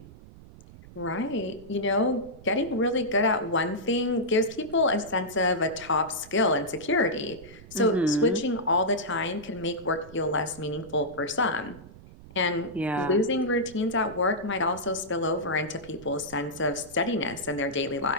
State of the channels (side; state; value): right; noise; rumble, 19 dB below the sound